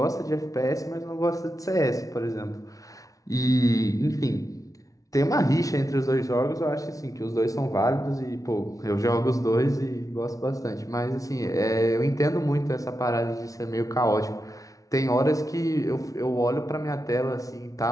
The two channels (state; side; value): late; right; 0.17 ms